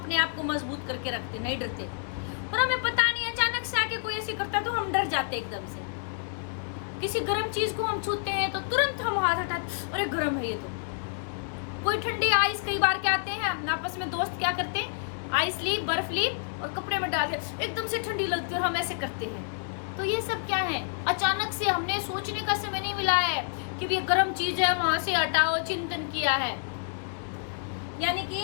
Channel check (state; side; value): silent; right; digital silence